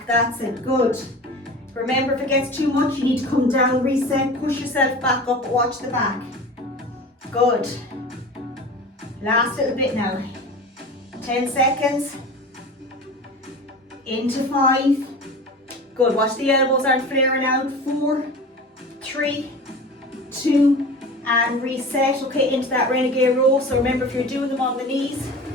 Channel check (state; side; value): normal; both; correlation 0.35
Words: that's it, good. Remember, if it gets too much, you need to come down, reset, push yourself back up, watch the back. Good. Last little bit now. 10 seconds. Into 5. Good, watch the elbows aren't flaring out. 4, 3, 2, and reset. Okay, into that renegade row. So remember, if you're doing them on the knees,